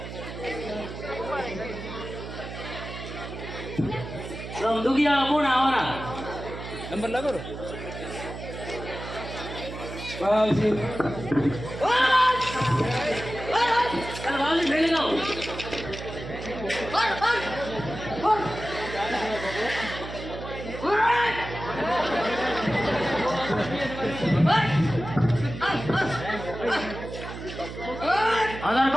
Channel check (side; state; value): right; noise; hum, 10 dB below the sound